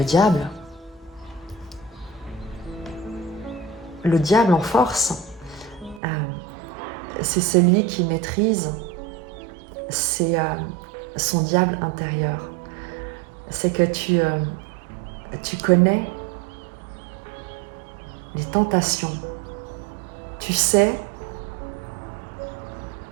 diable. Le diable en force, c'est celui qui maîtrise son diable intérieur. C'est que tu connais les tentations. Tu sais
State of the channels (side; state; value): left; drops out; at 6.0 s